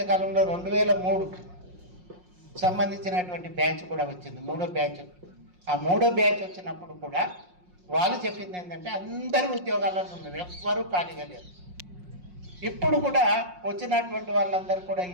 కాలంలో 2003 సంబంధించినటువంటి బ్యాచ్ కూడా వచ్చింది, 3వ బ్యాచ్. ఆ 3వ బ్యాచ్ వచ్చినప్పుడు కూడా వాళ్ళు చెప్పింది ఏంటంటే అందరూ ఉద్యోగాలలో ఉన్నారు, ఎవ్వరూ ఖాళీగా లేరు. ఇప్పుడు కూడా వచ్చినటువంటి వాళ్ళందరూ కూడా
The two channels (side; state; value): left; late; 5.5 ms